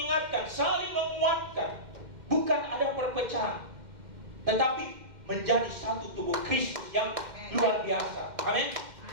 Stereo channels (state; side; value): late; left; 2.1 ms